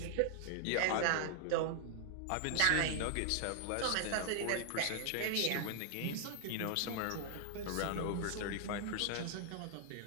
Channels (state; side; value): different; both; correlation 0.00